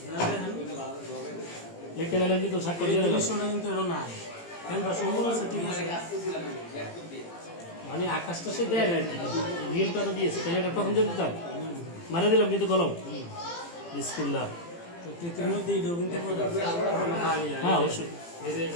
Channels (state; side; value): late; right; 18 ms